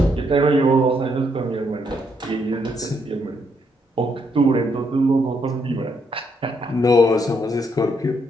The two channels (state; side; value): normal; both; correlation 0.75